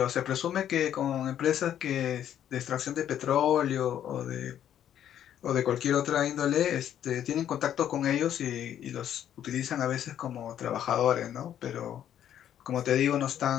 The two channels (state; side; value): quieter; right; 10.4 dB